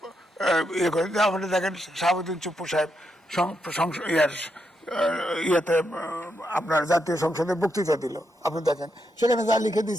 ইয়ে করে, আপনি দেখেন শাহাবুদ্দিন চুপ্পু সাহেব ইয়েতে আপনার জাতীয় সংসদে বক্তৃতা দিল, আপনি দেখেন সেখানে যা লিখে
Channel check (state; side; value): normal; both; correlation 0.82